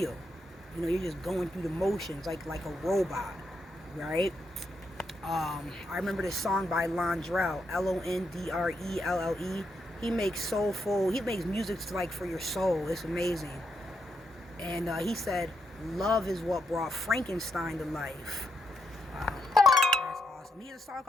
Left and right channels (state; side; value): normal; both; correlation 0.80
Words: You know, you're just going through the motions like a robot, right? I remember this song by Londrelle, Londrelle. He makes soulful. He makes music like for your soul. It's amazing. And he said, "Love is what brought Frankenstein to life." Wow, that's awesome. He has a song